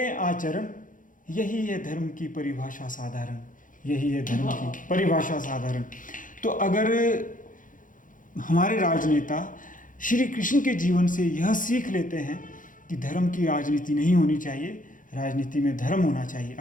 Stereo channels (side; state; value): right; late; 0.38 ms